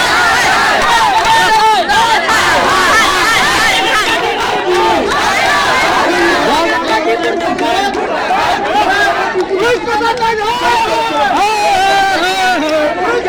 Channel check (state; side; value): identical; both; correlation 1.00